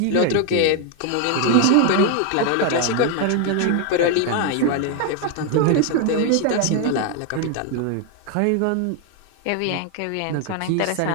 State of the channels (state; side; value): different; both; correlation 0.01